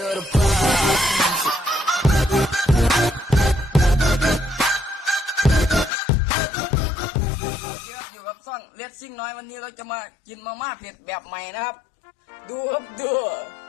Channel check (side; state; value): right; drops out; at 5.9 s